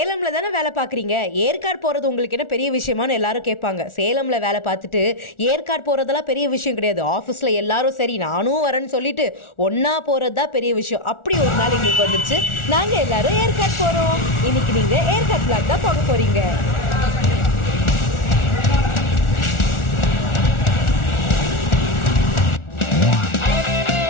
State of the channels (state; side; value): late; right; 1.4 ms